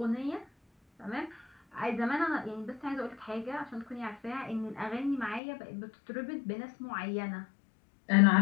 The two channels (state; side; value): drops out; right; at 5.4 s